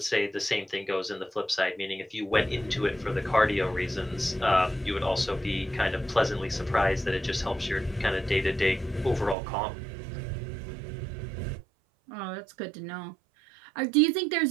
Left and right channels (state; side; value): drops out; left; at 9.3 s